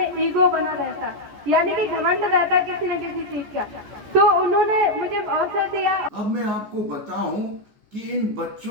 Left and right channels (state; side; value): late; left; 14 ms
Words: ईगो बना रहता, यानी कि घमंड रहता किसी न किसी चीज का। तो उन्होंने मुझे अवसर दिया। अब मैं आपको बताऊं कि इन